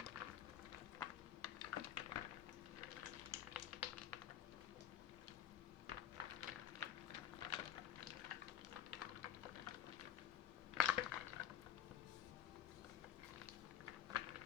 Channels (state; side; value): quieter; right; 10.1 dB